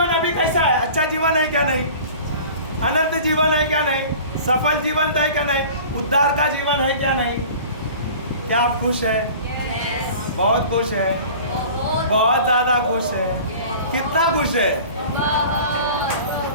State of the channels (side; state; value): both; inverted; correlation -0.42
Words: अभी कैसा है? अच्छा जीवन है क्या नहीं? अनंत जीवन है क्या नहीं, सफल जीवन है क्या नहीं, उद्धार का जीवन है क्या नहीं। क्या आप खुश है? बहुत खुश है, बहुत ज्यादा खुश है। कितना खुश है?